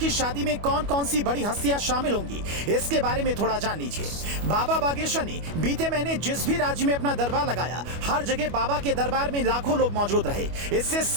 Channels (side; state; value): left; late; 25 ms